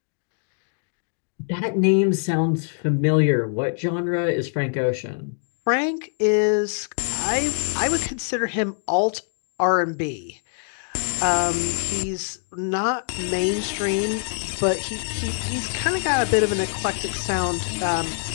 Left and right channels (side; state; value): right; silent; digital silence